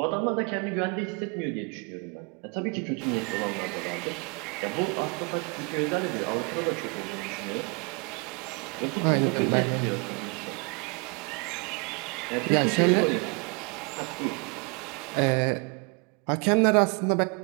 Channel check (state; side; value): quieter; left; 33.1 dB